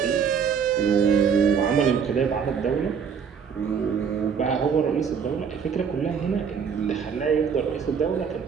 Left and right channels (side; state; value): left; quieter; 6.8 dB